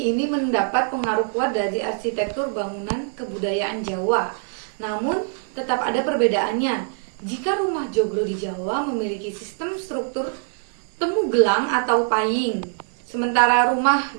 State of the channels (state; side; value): silent; left; 62 dB below the other